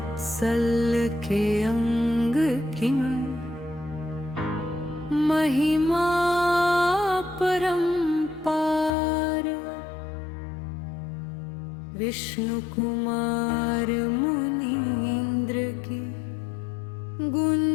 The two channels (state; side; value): drops out; right; at 8.9 s